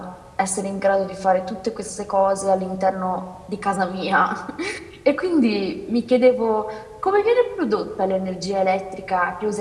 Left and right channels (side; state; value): both; identical; correlation 1.00